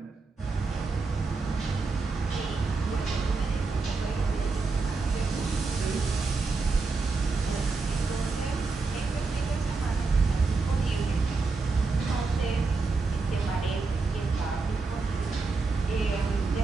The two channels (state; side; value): quieter; left; 4.1 dB